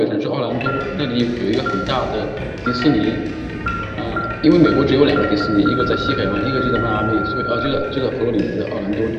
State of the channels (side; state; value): both; identical; correlation 1.00